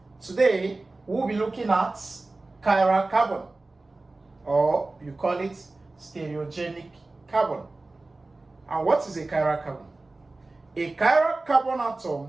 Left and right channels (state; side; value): quieter; left; 3.2 dB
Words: Today we'll be looking at chiral carbon, or you call it stereogenic carbon. And what is a chiral carbon? A chiral carbon